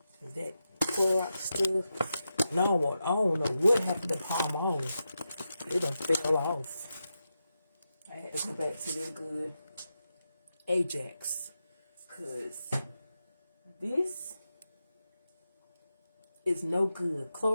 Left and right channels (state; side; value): inverted; both; correlation -0.89